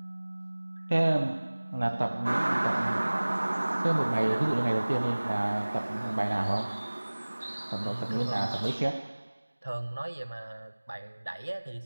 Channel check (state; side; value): inverted; both; correlation -1.00